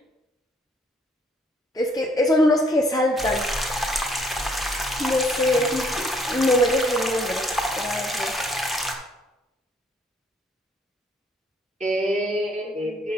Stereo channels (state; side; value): normal; both; correlation 0.65